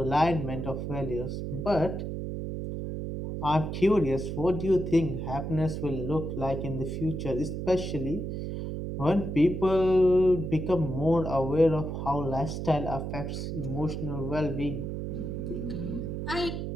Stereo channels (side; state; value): right; noise; hum, 4 dB below the sound